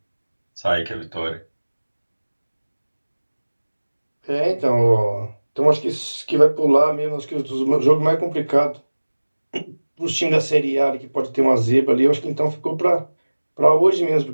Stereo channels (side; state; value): both; inverted; correlation -1.00